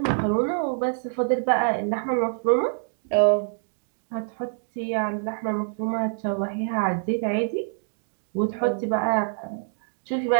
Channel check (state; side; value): silent; left; digital silence